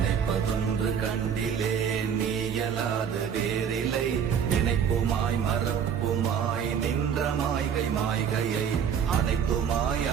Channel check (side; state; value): left; quieter; 7.7 dB